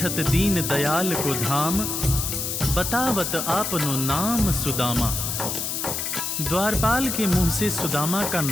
दीन दयाल को धाम, बतावत आपनो नाम सुदामा। द्वारपाल के मुंह से सुदामा का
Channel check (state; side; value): noise; left; hiss, 2 dB below the sound